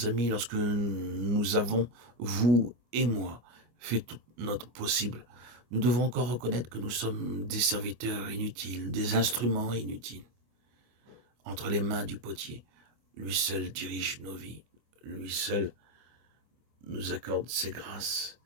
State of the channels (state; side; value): late; left; 25 ms